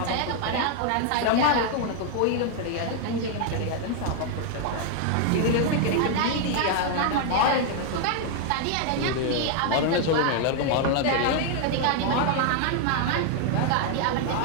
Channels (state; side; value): different; both; correlation 0.00